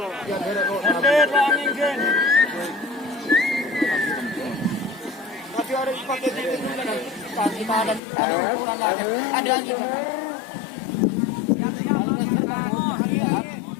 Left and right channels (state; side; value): drops out; right; at 8.0 s